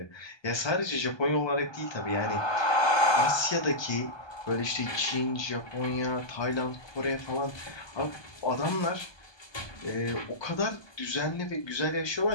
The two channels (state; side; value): late; right; 1.2 ms